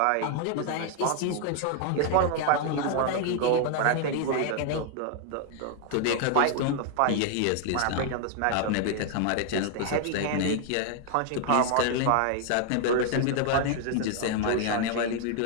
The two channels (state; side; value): different; both; correlation 0.00